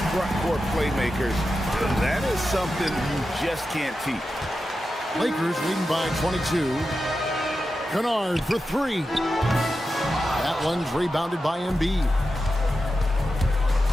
front court playmakers. That is something you just can't teach. Lakers leading by 22. Kennard for 3. That one's rebounded by Embiid.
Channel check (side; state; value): both; normal; correlation 0.91